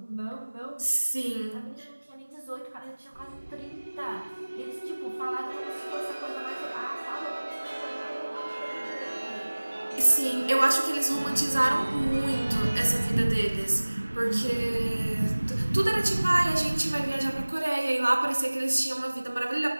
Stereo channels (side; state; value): both; inverted; correlation -1.00